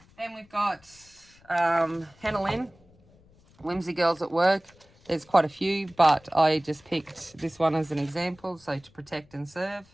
Then we've got Hannah Lynn, Whimsy Girls at Work. There's quite a few, but I just picked this one as an example. So to protect and serve.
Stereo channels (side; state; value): left; noise; rumble, 29 dB below the sound